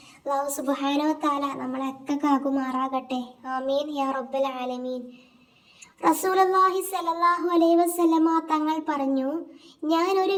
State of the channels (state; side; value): identical; both; correlation 1.00